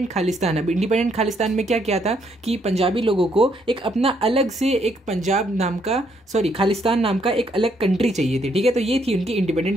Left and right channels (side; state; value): both; normal; correlation 0.72